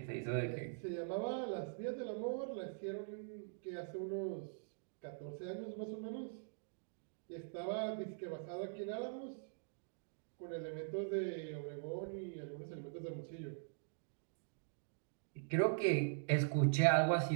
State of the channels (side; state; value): left; silent; digital silence